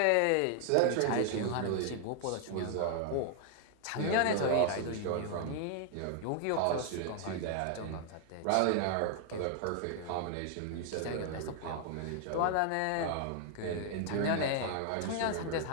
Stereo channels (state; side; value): different; both; correlation 0.00